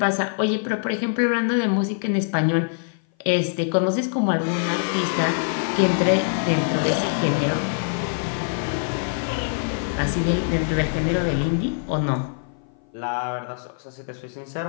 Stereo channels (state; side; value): silent; right; 57 dB below the other